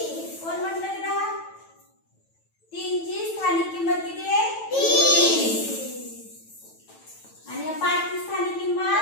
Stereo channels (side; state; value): right; late; 9.1 ms